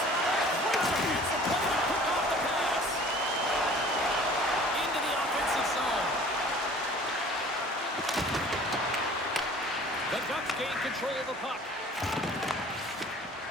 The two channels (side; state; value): both; normal; correlation 0.48